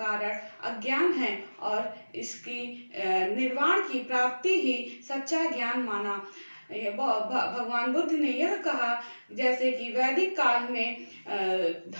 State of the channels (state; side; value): inverted; both; correlation -1.00